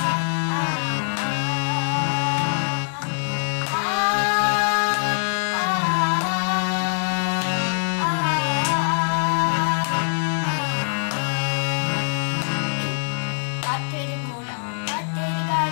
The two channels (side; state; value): right; silent; 63 dB below the other